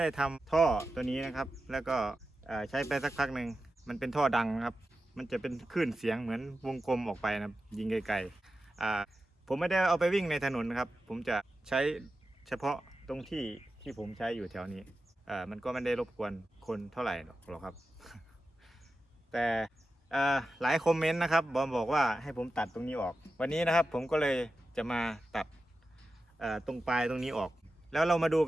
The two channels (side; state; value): both; normal; correlation 0.92